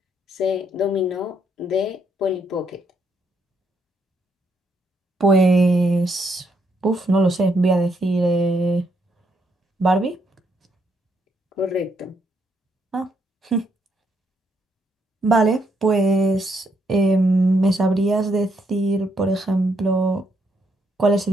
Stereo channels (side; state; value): both; normal; correlation 0.75